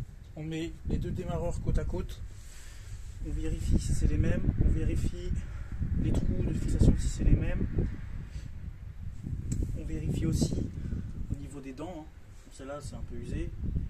on met les deux démarreurs côte à côte, on vérifie si c'est les mêmes, on vérifie les trous de fixation si c'est les mêmes, on vérifie aussi au niveau des dents, celle-là c'est un peu usé,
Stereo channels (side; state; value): both; identical; correlation 1.00